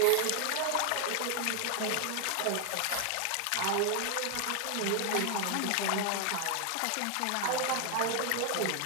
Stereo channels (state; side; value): different; both; correlation 0.00